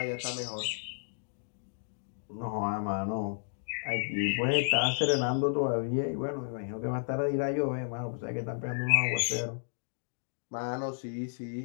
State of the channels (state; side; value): silent; right; digital silence